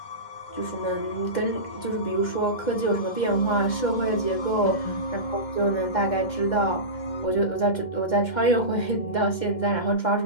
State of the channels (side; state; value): right; late; 2.1 ms